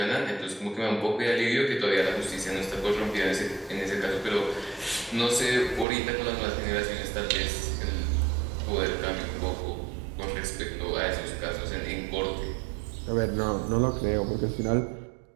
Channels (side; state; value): left; drops out; at 5.9 s